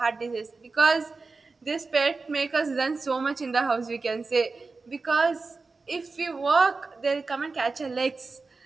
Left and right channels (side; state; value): left; quieter; 4.0 dB